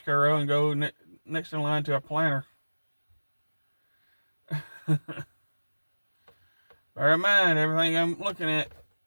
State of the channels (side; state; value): both; inverted; correlation -1.00